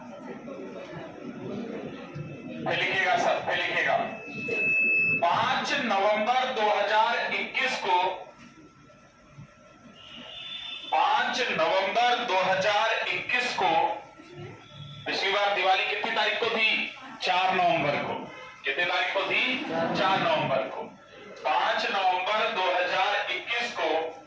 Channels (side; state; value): both; identical; correlation 1.00